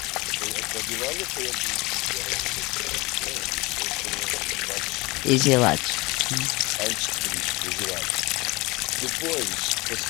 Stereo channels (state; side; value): quieter; right; 23.3 dB